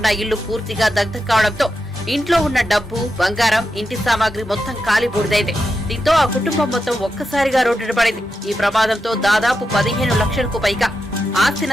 ఇల్లు పూర్తిగా దగ్ధం కావడంతో ఇంట్లో ఉన్న డబ్బు, బంగారం, ఇంటి సామాగ్రి మొత్తం కాలి బూడిదైంది. దీంతో ఆ కుటుంబం మొత్తం ఒక్కసారిగా రోడ్డున పడింది. ఈ ప్రమాదంతో దాదాపు 15 లక్షలకు పైగా ఆస్తి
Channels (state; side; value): normal; both; correlation 0.88